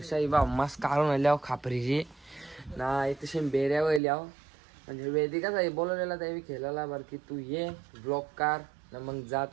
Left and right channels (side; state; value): left; drops out; at 4.0 s